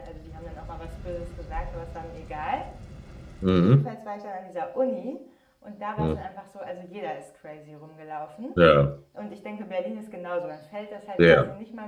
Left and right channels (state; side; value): identical; both; correlation 1.00